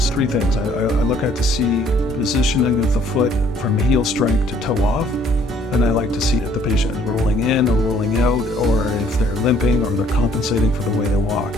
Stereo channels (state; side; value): normal; both; correlation 0.61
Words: three things. I look at to see positioning of the foot from heel strike to toe off. And I like to see if the patient is rolling in or rolling out, or if they're limping or they're compensating for the way they walk.